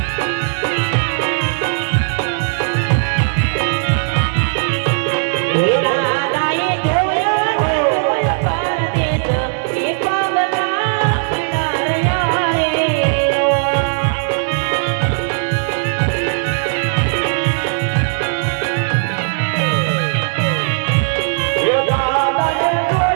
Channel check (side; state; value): left; silent; digital silence